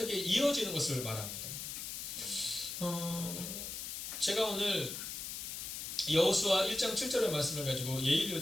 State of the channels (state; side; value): noise; left; hiss, 6 dB below the sound